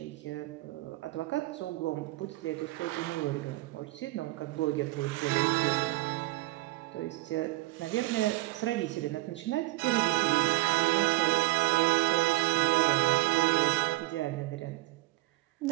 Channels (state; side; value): quieter; left; 20.0 dB